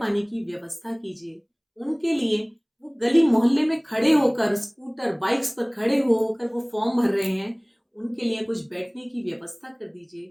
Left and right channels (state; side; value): identical; both; correlation 1.00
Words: पानी की व्यवस्था कीजिए। उनके लिए वो गली मोहल्ले में खड़े होकर स्कूटर बाइक्स पर खड़े होकर वो फॉर्म भर रहे हैं, उनके लिए कुछ बैठने की व्यवस्था कर